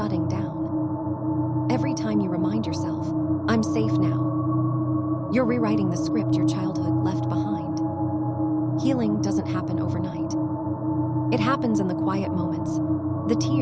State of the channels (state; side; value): identical; both; correlation 1.00